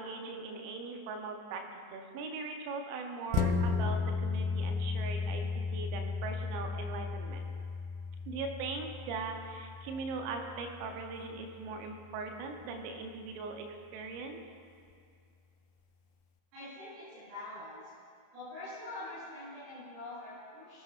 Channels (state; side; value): late; left; 34 ms